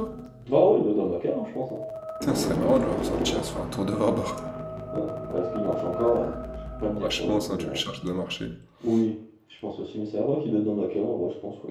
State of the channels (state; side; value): identical; both; correlation 1.00